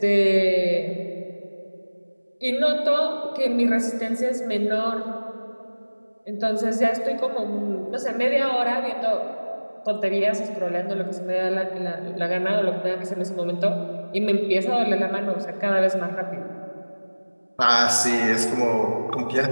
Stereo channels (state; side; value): inverted; both; correlation -1.00